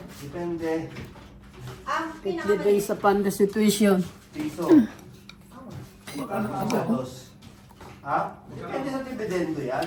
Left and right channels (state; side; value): identical; both; correlation 1.00